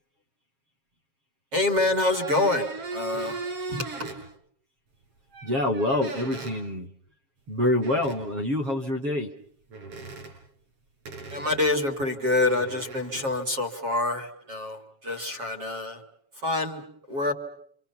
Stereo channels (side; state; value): left; late; 7.4 ms